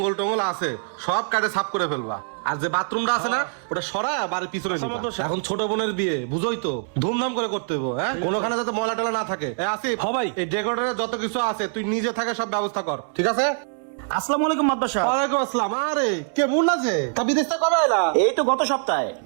টঙ্গল আছে সব কাটে সাফ করে ফেলবা, আর যে বাথরুমটা আছে না ওটা সরায় বাড়ির পিছনে নিবা। এখন ছোট বোনের বিয়ে, বুঝোই তো, ধুমধাম করে করতে হইব। হ্যাঁ, কোনোখানে যাতে ময়লা টলা না থাকে। আসিফ, ভাই, এই ডেকোরেটরের যত কিছু আছে তুই নিজে থাকে সব ব্যবস্থা কর, ঠিক আছে? আসসালামু আলাইকুম মাতবর সাহেব। ওয়ালাইকুম আসসালাম। আরে কেমন আছে? তা বিদেশ থেকে কবে এলা? এই তো গত সপ্তাহে।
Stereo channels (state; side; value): silent; left; 63 dB below the other